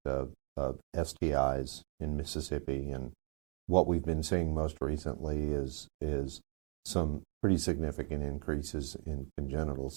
of STIs in Mississippi, and what we've been seeing most recently is some pretty significant increases in congenital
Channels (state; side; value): quieter; left; 36.7 dB